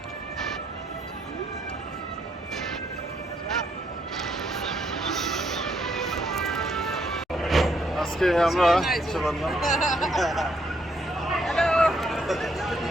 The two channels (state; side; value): normal; both; correlation 0.73